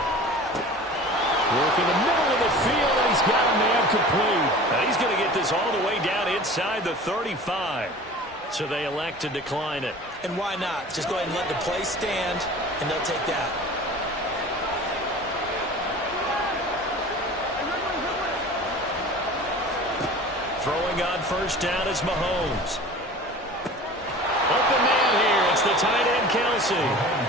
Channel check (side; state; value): both; normal; correlation 0.40